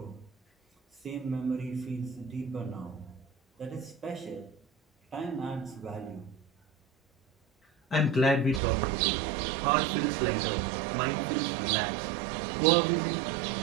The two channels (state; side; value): drops out; left; at 8.6 s